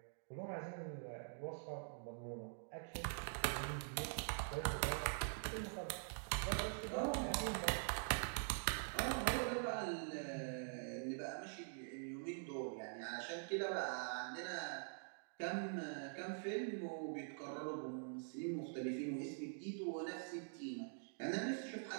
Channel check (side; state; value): left; silent; digital silence